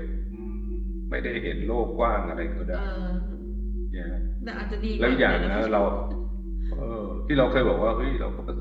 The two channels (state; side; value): identical; both; correlation 1.00